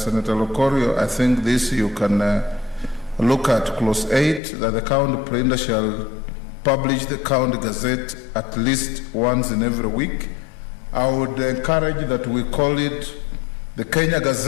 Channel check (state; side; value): drops out; right; at 4.4 s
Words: Lokorio. I think this you can look at clause 8, that the county printer shall publish the county gazette at least once in every week. I would encourage that we call it the Kenya